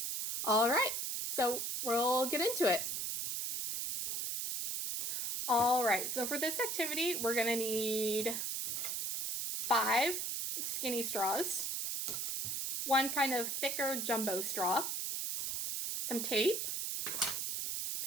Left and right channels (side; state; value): right; noise; hiss, 1 dB below the sound